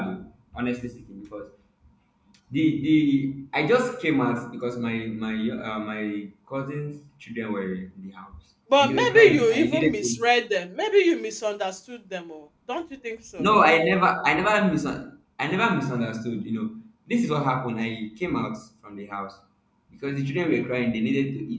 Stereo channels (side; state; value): both; identical; correlation 1.00